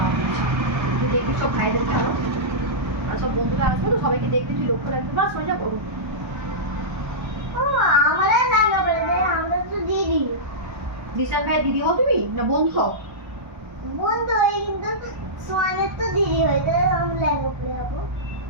পরছে, তুই দেখবি সব ভাইদের ভালো আর সব বন্ধুরা আসবে তো সবাইকে দেখবি, তুই লক্ষ্য রাখবি, বাস হয়ে যাবো। আমরা লাগা বলে দে, আমরা তো দিদি বিশাল ভাই দিদি হও তুমি না বন্ধু হও? বন্ধু হই, কিন্তু সোয়ানের তো দিদি হয়, তাই আমি লেহেঙ্গা পরে যাবো।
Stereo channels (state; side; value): late; left; 1.2 ms